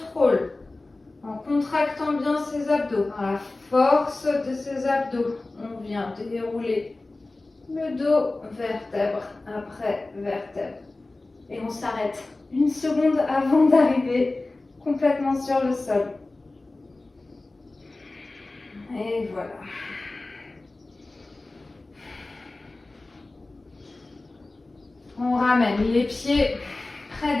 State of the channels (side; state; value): right; quieter; 3.1 dB